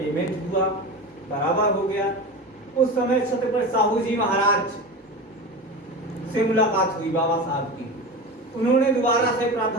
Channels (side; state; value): both; normal; correlation 0.27